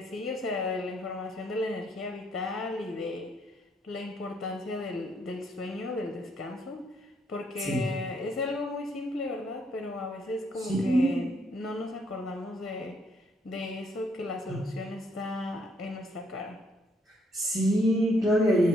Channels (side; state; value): both; normal; correlation 0.70